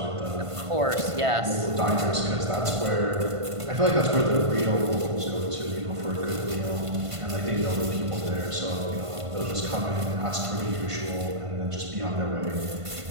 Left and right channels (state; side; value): late; left; 1.5 ms